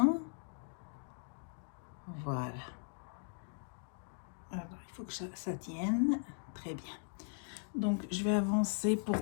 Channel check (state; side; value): silent; right; 52 dB below the other